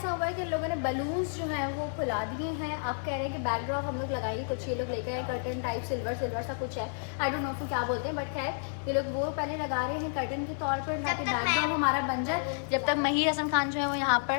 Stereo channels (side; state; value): right; silent; 57 dB below the other